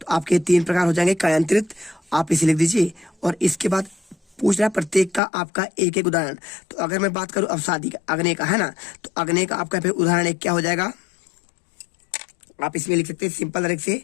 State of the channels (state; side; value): drops out; right; at 5.2 s